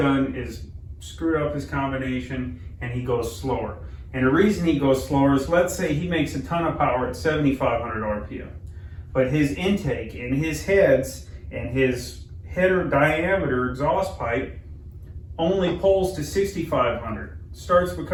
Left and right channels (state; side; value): identical; both; correlation 1.00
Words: is screwed up his combination, and he goes slower. And the reason he goes slower is, let's say he makes a ton of power at 7,500 RPM, but his intake and his heads and his header diameter exhaust pipe only pulls to 6,500. Starts